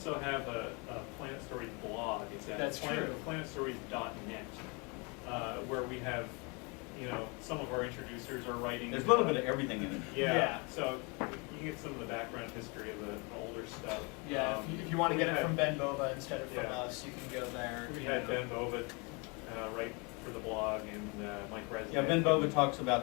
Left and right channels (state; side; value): quieter; right; 30.8 dB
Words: have a Planet Stories blog. It's at That's true. planetstories.net, where we have, you know, some of our introducers are writing. There's a little bit of everything in it. Yeah. So you get some of the background history of the older stuff. Yeah, if you want to get it from Ben Bova instead of from Yeah. us, you can go there. We you had know. Ben Bova write for the blog, and Mike Resnick. Yeah, Ben Bova talks